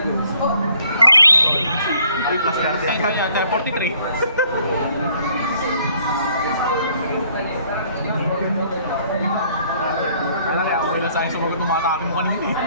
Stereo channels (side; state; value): both; inverted; correlation -0.63